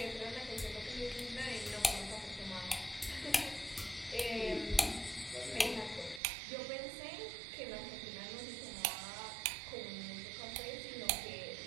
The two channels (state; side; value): drops out; left; at 6.2 s